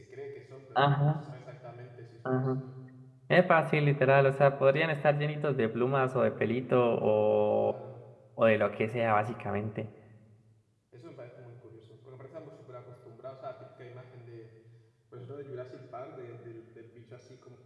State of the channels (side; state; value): both; identical; correlation 1.00